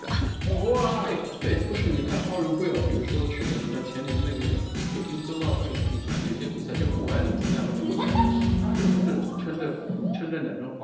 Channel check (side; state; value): both; identical; correlation 1.00